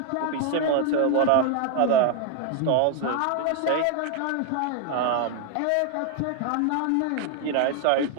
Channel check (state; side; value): different; both; correlation 0.01